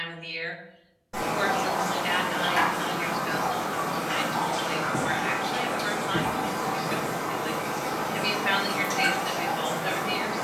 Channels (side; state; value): both; identical; correlation 1.00